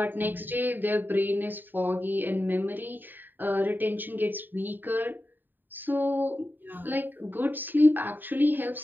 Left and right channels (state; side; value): late; left; 0.091 ms